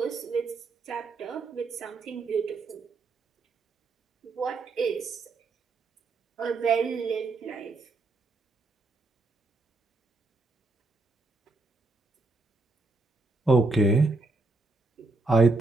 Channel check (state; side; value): quieter; left; 3.3 dB